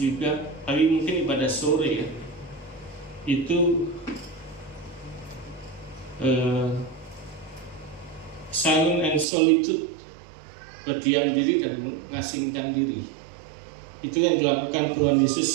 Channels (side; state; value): left; drops out; at 9.2 s